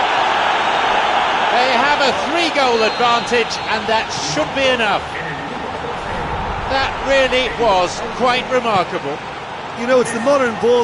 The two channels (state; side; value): identical; both; correlation 1.00